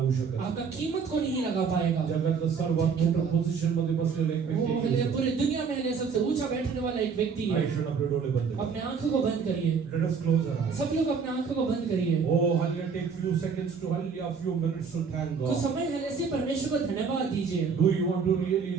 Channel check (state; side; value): quieter; left; 5.8 dB